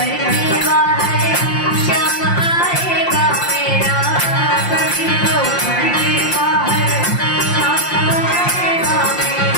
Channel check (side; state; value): right; late; 5.7 ms